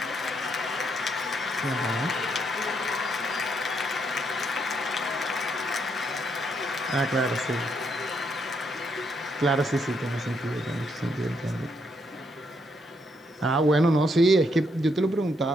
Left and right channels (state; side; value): normal; both; correlation 0.75